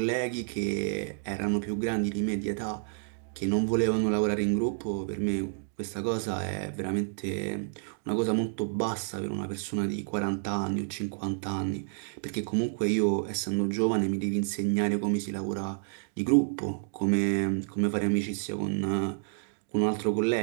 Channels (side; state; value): left; silent; digital silence